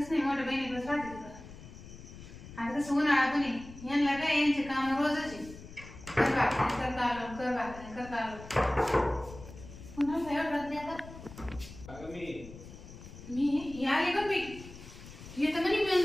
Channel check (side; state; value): left; noise; rumble, 16 dB below the sound